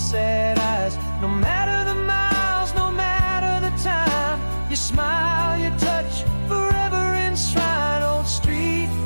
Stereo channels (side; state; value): both; inverted; correlation -1.00